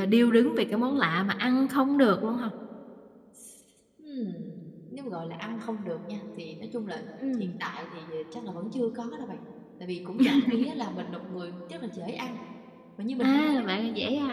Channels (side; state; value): both; identical; correlation 1.00